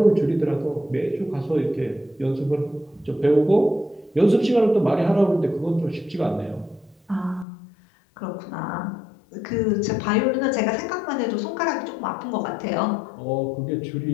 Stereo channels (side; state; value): right; drops out; at 7.5 s